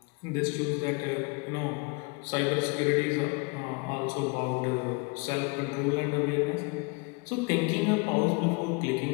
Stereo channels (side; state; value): right; quieter; 30.1 dB